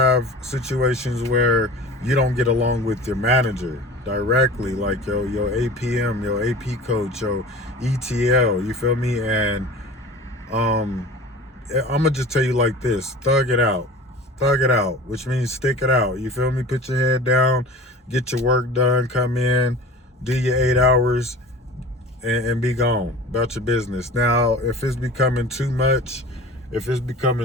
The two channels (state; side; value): normal; both; correlation 0.38